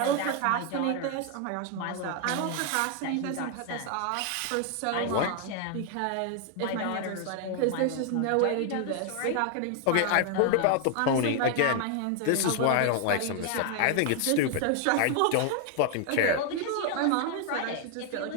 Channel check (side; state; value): both; different; correlation 0.00